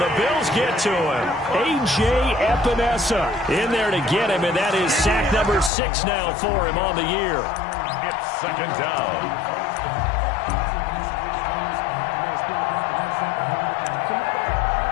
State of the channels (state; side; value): drops out; right; at 5.7 s